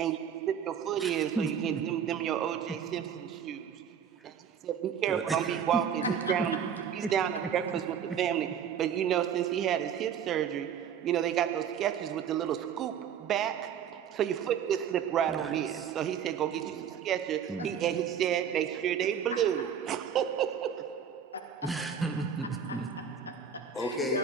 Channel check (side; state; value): left; quieter; 8.0 dB